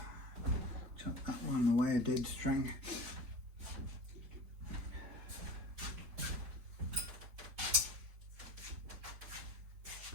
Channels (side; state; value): left; late; 4.3 ms